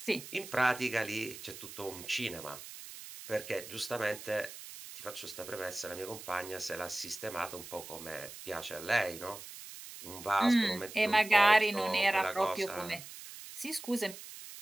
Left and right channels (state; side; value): noise; right; hiss, 13 dB below the sound